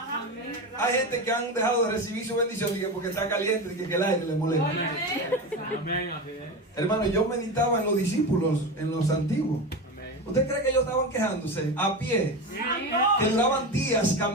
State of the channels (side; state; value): both; normal; correlation 0.22